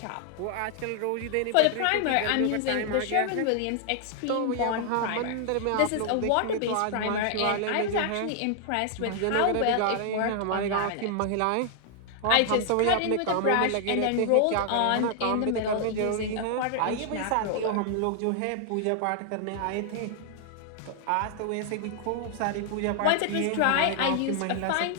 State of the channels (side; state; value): both; different; correlation 0.00